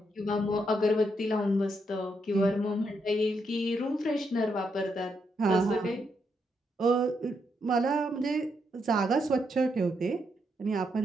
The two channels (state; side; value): normal; both; correlation 0.79